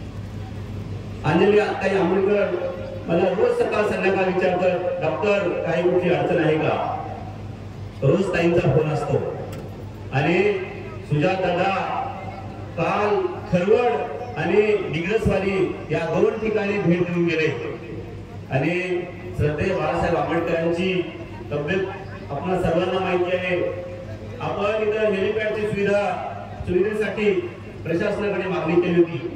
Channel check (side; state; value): both; identical; correlation 1.00